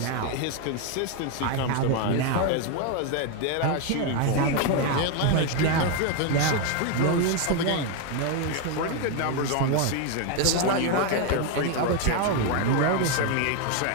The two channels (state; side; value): different; both; correlation 0.01